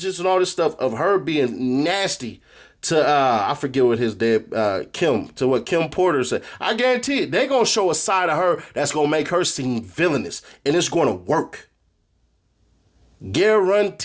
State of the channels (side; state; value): both; identical; correlation 1.00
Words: and all this stuff of her being nasty to, I forget what his dad, Kim, to what Kim Porter said. I guarantee it. They're going to show a side of her that's going to make her seem villainous. And it's going to work.